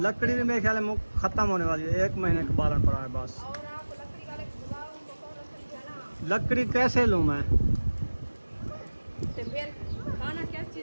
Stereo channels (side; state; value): both; inverted; correlation -1.00